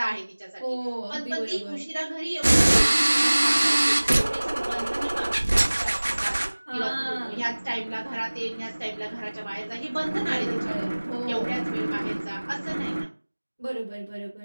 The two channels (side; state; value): both; inverted; correlation -1.00